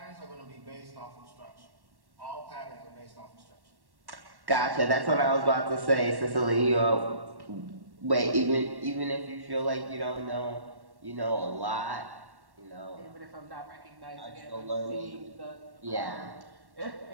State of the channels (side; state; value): left; late; 1.1 ms